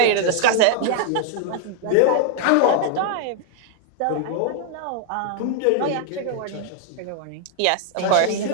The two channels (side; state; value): both; different; correlation 0.00